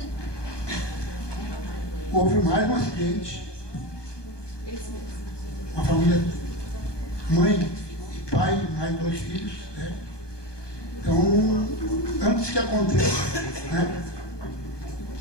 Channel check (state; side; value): late; right; 1.2 ms